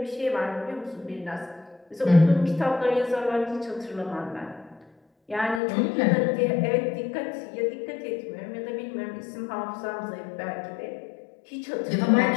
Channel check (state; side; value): drops out; right; at 5.6 s